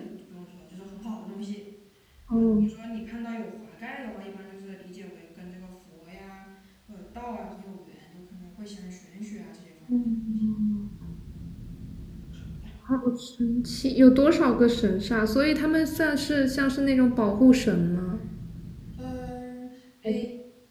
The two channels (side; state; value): both; identical; correlation 1.00